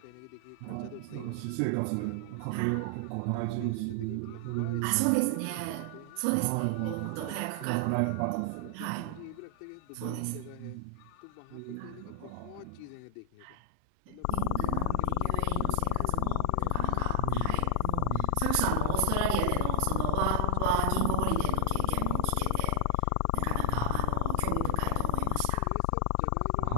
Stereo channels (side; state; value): both; different; correlation 0.00